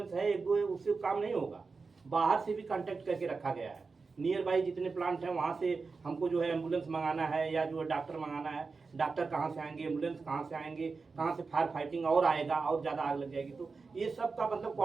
है, 1-2 उससे काम नहीं होगा, बाहर से भी कांटेक्ट करके रखा गया है नियर बाई जितने प्लांट हैं वहाँ से हमको जो है एम्बुलेंस मंगाना है या जो है डॉक्टर मंगाना है, डॉक्टर कहाँ से आएंगे, एम्बुलेंस कहाँ से आएंगे, कहाँ से फायर फाइटिंग और आएगा और ज़्यादा आग लग जाएगी। तो ये सब का मतलब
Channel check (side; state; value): left; quieter; 4.5 dB